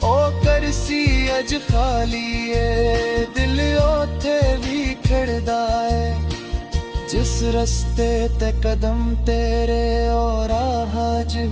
ਉਹ ਕਰਸੀ ਅਜ ਖਾਲੀ ਏ ਦਿਲ ਉੱਥੇ ਵੀ ਖੜਦਾ ਏ ਜਿਸ ਰਸਤੇ ਤੇ ਕਦਮ ਤੇਰੇ ਔਰ ਰਾਹ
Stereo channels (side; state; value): both; identical; correlation 1.00